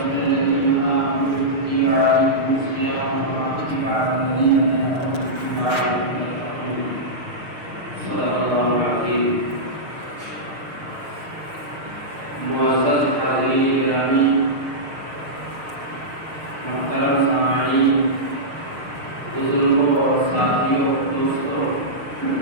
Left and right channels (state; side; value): late; left; 6.5 ms